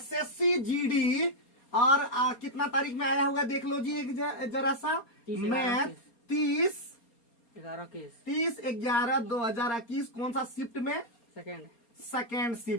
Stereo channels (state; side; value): late; right; 4.3 ms